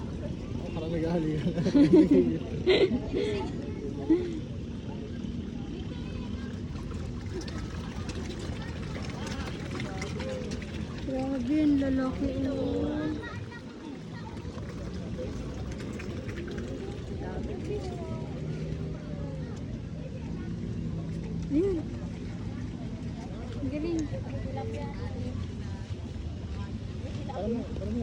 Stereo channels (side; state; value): both; identical; correlation 1.00